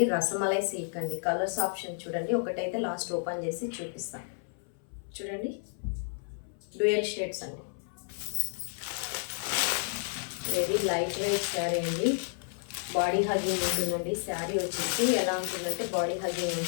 రసమలై సిల్క్ అండి. కలర్స్ ఆప్షన్ చూడండి, ఒకటైతే లాస్ట్ ఓపెన్ చేసి చూపిస్తాను. చూడండి, డ్యూయల్ షేడ్స్ అండి. వెరీ లైట్ వెయిట్ శారీ అండి. బాడీ హగ్గింగ్ ఉంటుందండి. శారీ వచ్చేసి ఎలా ఉంటుందంటే బాడీ హగ్గింగ్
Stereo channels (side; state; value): right; silent; 57 dB below the other